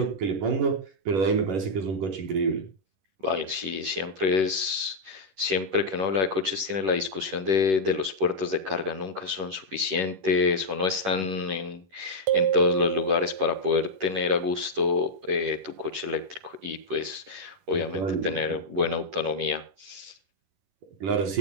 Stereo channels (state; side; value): late; left; 11 ms